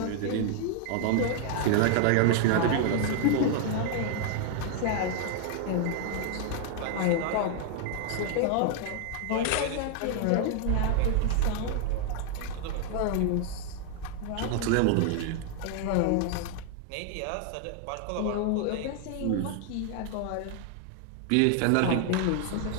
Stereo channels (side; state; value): both; different; correlation 0.00